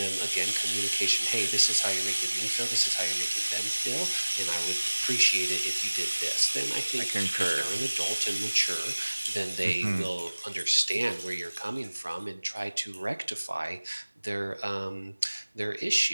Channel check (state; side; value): inverted; both; correlation -1.00